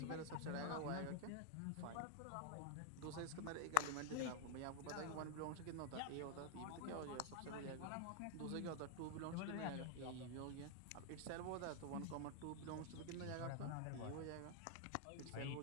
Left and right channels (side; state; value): both; different; correlation 0.00